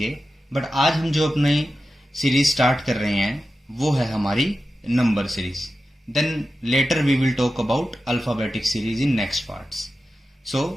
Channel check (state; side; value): normal; both; correlation 0.92